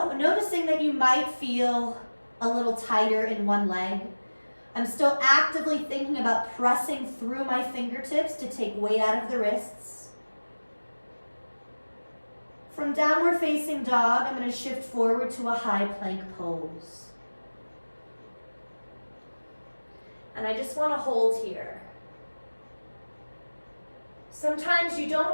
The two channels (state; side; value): inverted; both; correlation -1.00